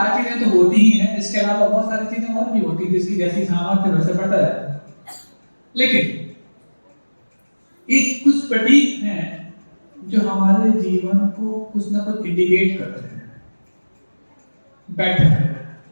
चीजें तो होती ही हैं। इसके अलावा बहुत सारी चीजें और भी होती है जिसकी जैसी सामर्थ्य वैसे पड़ता है। लेकिन ये कुछ प्रतीक हैं जो हमारे जीवन को कुछ ना कुछ इंडिकेट करते हैं। बैठक है,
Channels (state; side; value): inverted; both; correlation -1.00